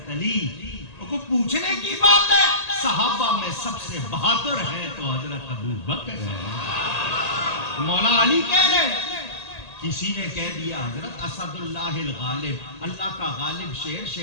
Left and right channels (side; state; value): right; late; 1.8 ms